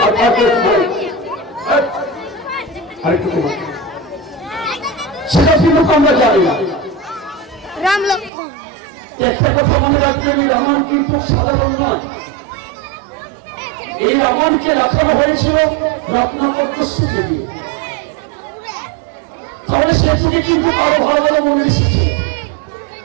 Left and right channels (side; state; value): left; drops out; at 8.3 s